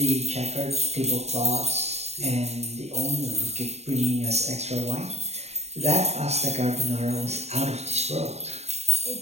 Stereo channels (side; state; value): left; late; 0.31 ms